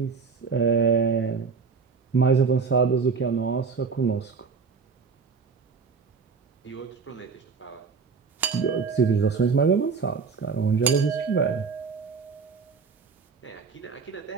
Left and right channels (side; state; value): left; quieter; 5.2 dB